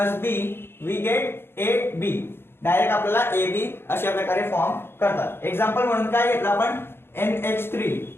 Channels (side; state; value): right; late; 0.11 ms